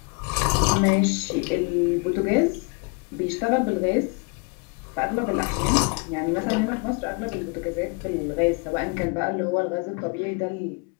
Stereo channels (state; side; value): quieter; right; 31.8 dB